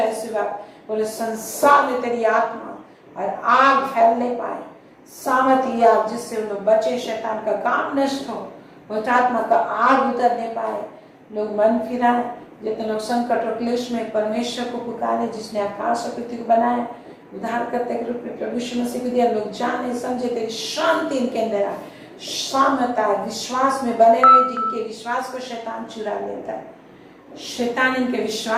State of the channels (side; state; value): both; identical; correlation 1.00